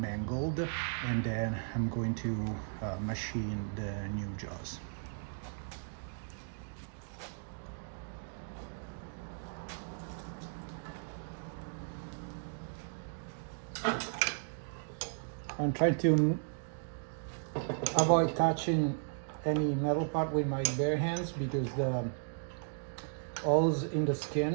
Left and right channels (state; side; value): silent; left; digital silence